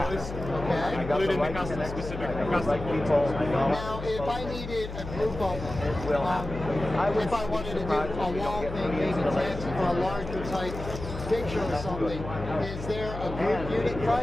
including the custom-specific custom controls. Now, if I needed a group of them, if I wanted to do a wall thing, maybe fancy for a larger type picture or something, is there a group unit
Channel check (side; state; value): left; noise; hum, 9 dB below the sound